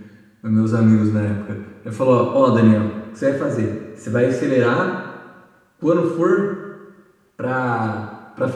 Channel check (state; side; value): identical; both; correlation 1.00